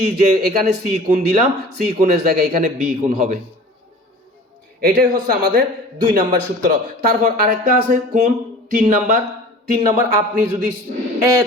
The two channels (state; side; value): normal; both; correlation 0.42